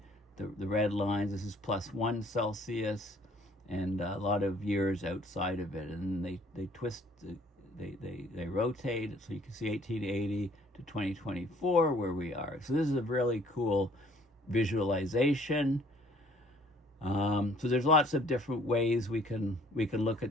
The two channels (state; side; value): normal; both; correlation 0.58